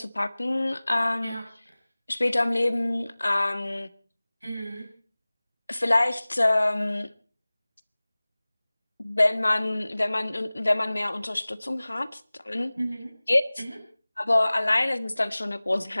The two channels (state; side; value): inverted; both; correlation -0.99